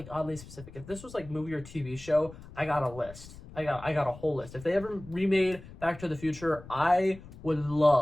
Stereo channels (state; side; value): noise; left; rumble, 17 dB below the sound